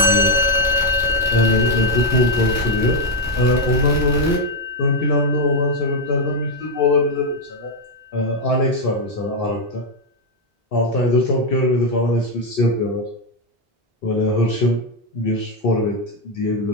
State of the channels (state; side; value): normal; both; correlation 0.02